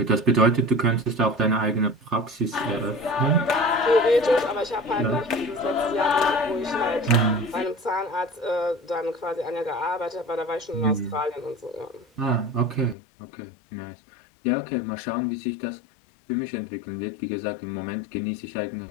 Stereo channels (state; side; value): drops out; right; at 13.0 s